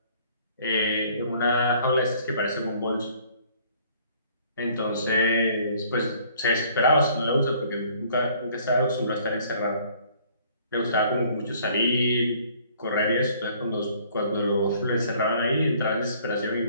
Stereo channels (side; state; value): both; inverted; correlation -0.58